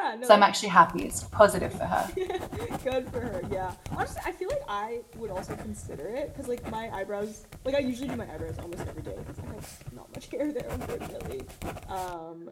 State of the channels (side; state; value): both; identical; correlation 1.00